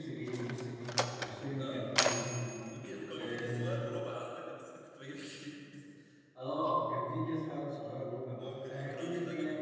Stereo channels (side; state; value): both; identical; correlation 1.00